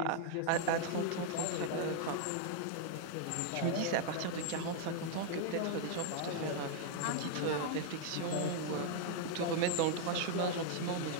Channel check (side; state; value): both; different; correlation 0.00